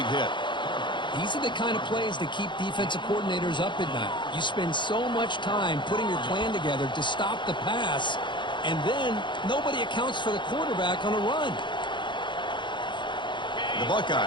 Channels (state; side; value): late; right; 0.23 ms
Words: hit. These are the kind of plays that keep defensive coordinators up at night. You spend so much time putting your plan together to stop the pass, and then nobody accounts for the quarterback on a run. The